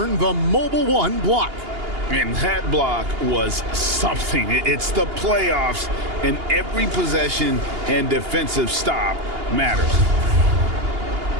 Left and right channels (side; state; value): left; late; 2.8 ms